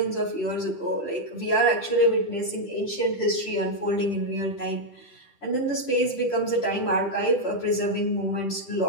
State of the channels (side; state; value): right; late; 10 ms